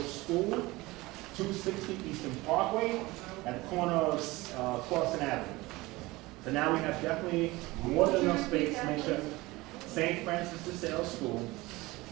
School, 260 Eastern Parkway, at the corner of Clawson Avenue. So now we have definitely more than enough space to make sure St. Francis de Sales School,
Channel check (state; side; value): quieter; left; 20.9 dB